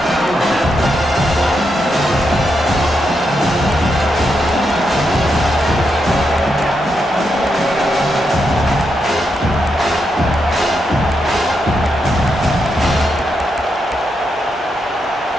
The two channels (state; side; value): normal; both; correlation 0.83